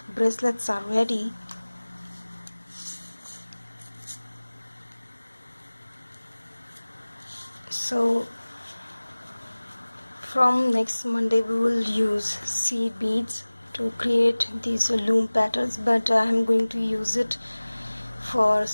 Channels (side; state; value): both; inverted; correlation -1.00